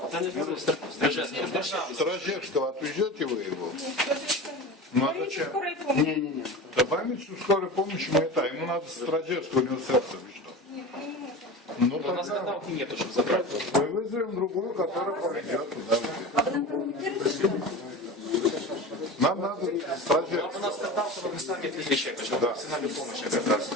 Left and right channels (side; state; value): both; normal; correlation 0.30